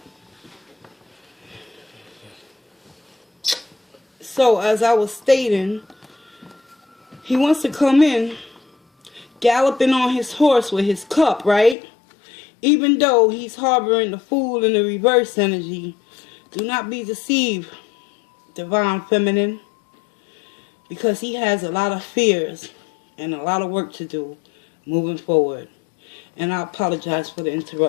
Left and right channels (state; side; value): drops out; right; at 11.8 s